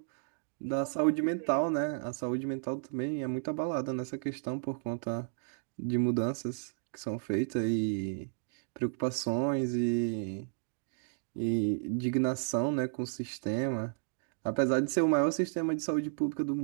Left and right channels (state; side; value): silent; left; digital silence